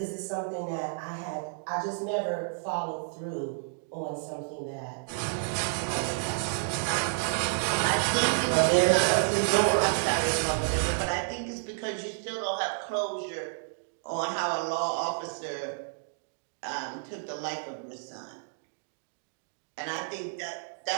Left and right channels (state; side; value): silent; left; digital silence